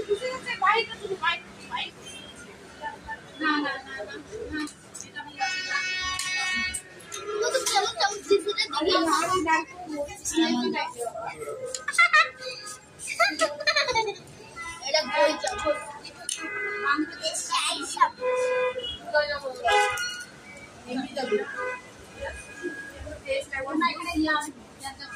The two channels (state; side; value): identical; both; correlation 1.00